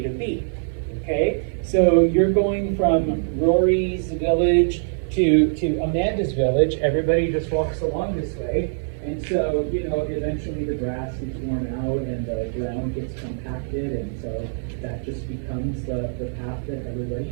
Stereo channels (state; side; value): silent; left; 60 dB below the other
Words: to B. Okay, so you're going from Rory's village to Amanda's village. Everybody just walks along this way, and so eventually the grass gets worn out and the ground gets compacted, and so that just becomes the path that everybody